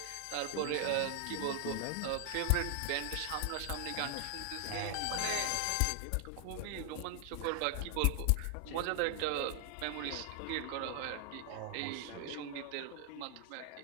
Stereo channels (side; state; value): both; different; correlation 0.00